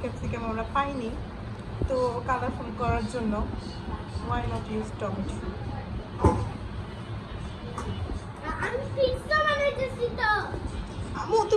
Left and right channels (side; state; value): both; identical; correlation 1.00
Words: ক্যাপসিকাম আমরা পাইনি, তো কালারফুল করার জন্য ওয়াই নট ইউজ টমেটো। আমি পিৎজা বানাইতেছি তো। আমু